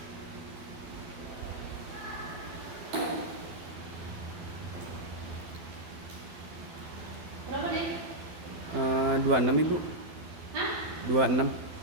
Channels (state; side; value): late; left; 12 ms